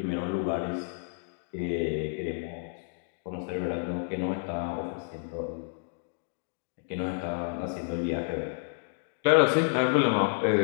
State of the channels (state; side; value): silent; right; digital silence